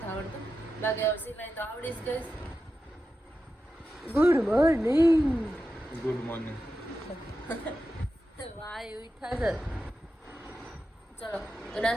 આવડતું, બાકી હવે સિલાઈ તો આવડી જ ગઈ. Good morning. Good morning. વાહ એવું થશે. ચલો તો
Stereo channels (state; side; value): normal; both; correlation 0.90